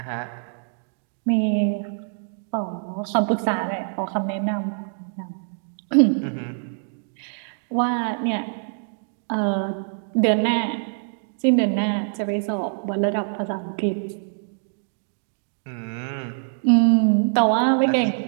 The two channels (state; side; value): silent; left; digital silence